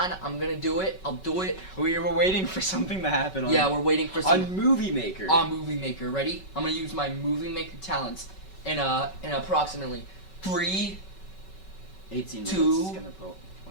gonna do it. I'll do it. We were waiting for something to happen. On, Yeah, we're waiting for some on Movie Maker. on Movie Maker. Ready? I'm gonna use my Movie Maker talents in approximately 3, 18 minutes. 2, It's gonna point up.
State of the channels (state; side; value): late; right; 5.3 ms